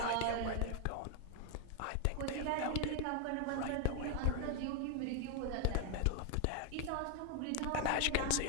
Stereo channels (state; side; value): different; both; correlation 0.00